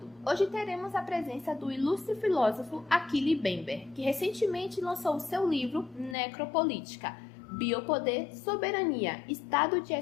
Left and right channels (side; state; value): right; drops out; at 6.2 s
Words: Hoje teremos a presença do ilustre filósofo Achille Mbembe, que recentemente lançou o seu livro Necropolítica, Biopoder, Soberania, Estado de